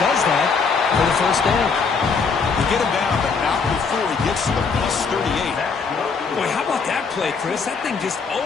does that for the first down. They get him down, but not before he gets to the plus 38. Boy, how about that play, Chris? That thing just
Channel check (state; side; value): quieter; right; 5.2 dB